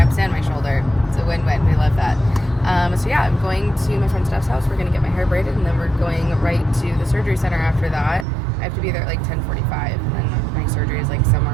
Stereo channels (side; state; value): left; drops out; at 8.2 s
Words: and my shoulder. It's a win-win. We love that. So yeah, I'm going to my friend Steph's house. We're going to get my hair braided and then we're going right to the surgery center after that. I have to be there at like 10:45 and then my surgery is like